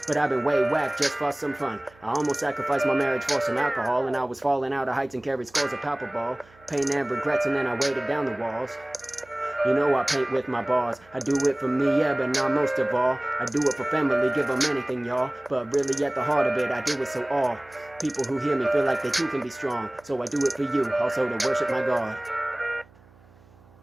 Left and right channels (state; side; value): noise; right; hum, 27 dB below the sound